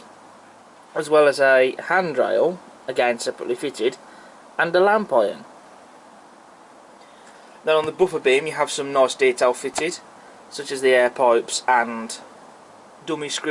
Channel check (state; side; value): identical; both; correlation 1.00